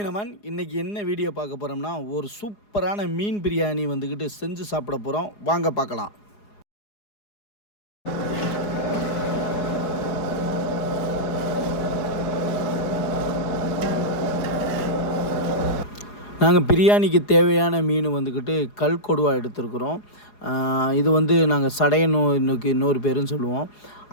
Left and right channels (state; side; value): late; right; 4.8 ms